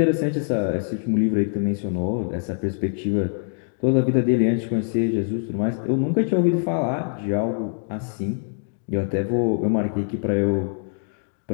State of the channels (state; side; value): silent; right; digital silence